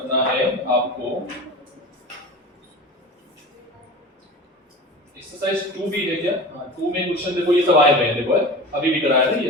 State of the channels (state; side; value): normal; both; correlation 0.34